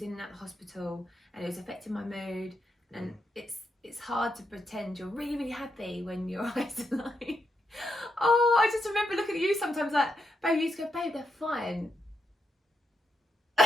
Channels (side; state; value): both; normal; correlation 0.82